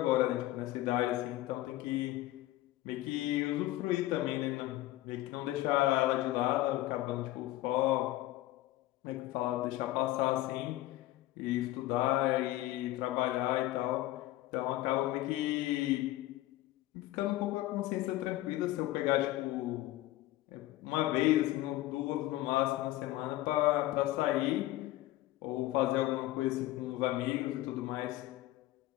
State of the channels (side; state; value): right; quieter; 16.2 dB